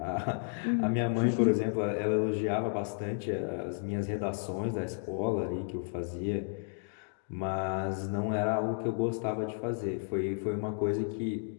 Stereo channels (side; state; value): right; silent; digital silence